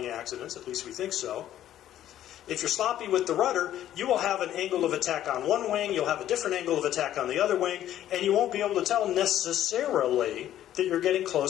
accidents, at least we think so. If you're sloppy with the rudder, you will have an angle of attack on one wing, you'll have a different angle of attack on the other wing, and you won't be able to tell necessarily that you're getting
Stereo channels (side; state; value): right; quieter; 12.0 dB